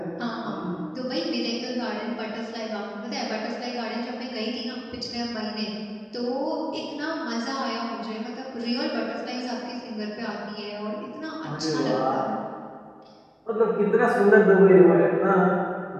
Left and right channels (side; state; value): both; identical; correlation 1.00